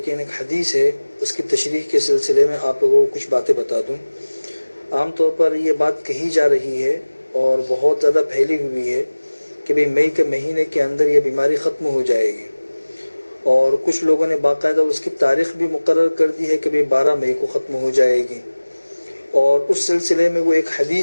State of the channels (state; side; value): inverted; both; correlation -1.00